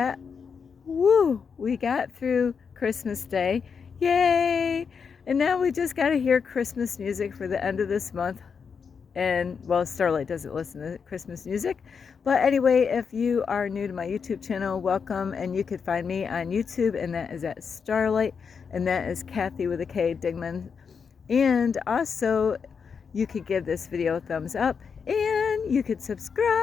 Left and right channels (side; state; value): right; quieter; 6.1 dB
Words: woo, we got through Christmas Day. Yay! And now we just got to hear Christmas music for the end of this month. And well, Starlight doesn't listen to Christmas music, but anyway, if you are new to my YouTube channel, welcome. And you could find me on YouTube, and that is at Starlight, and that is Kathy with a K Digman. And also you could give this video a thumbs up, and you could